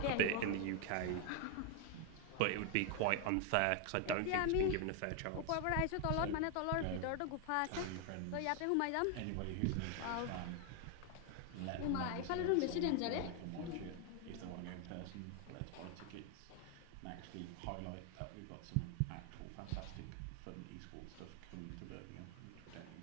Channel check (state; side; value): different; both; correlation 0.00